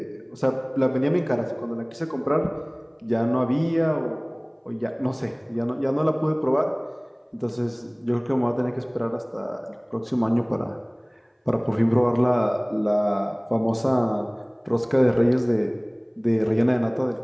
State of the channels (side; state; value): both; identical; correlation 1.00